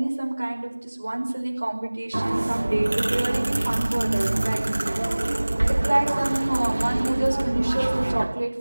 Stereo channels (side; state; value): both; inverted; correlation -1.00